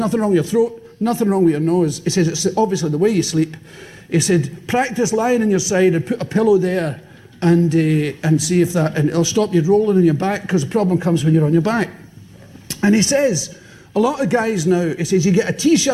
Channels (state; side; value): identical; both; correlation 1.00